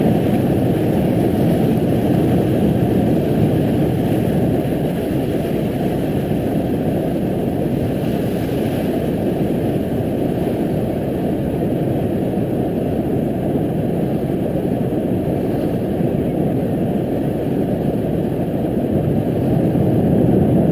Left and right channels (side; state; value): both; identical; correlation 1.00